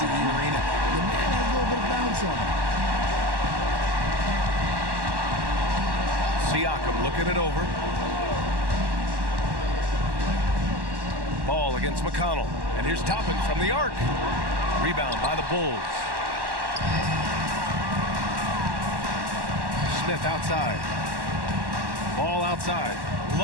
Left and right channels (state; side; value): late; left; 1.1 ms